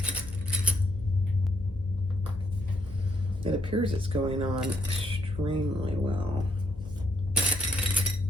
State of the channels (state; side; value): noise; left; hum, 15 dB below the sound